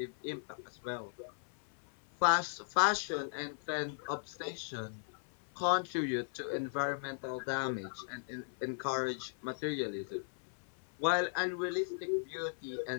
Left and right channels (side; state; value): right; silent; 53 dB below the other